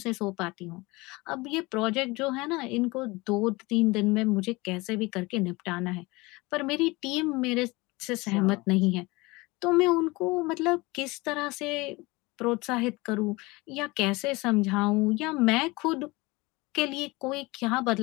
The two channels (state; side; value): quieter; right; 23.3 dB